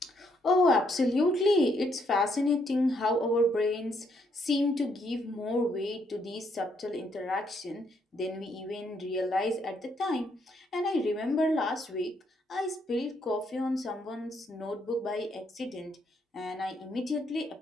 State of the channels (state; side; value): normal; both; correlation 0.73